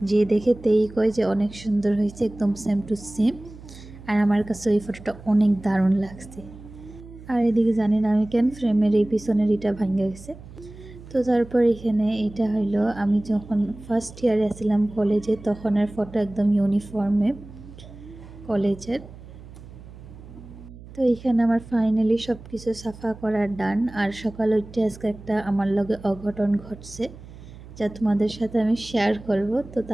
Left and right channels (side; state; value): right; noise; hum, 17 dB below the sound